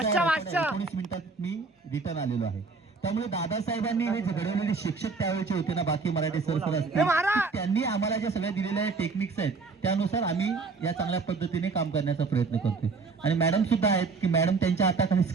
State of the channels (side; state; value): left; quieter; 4.4 dB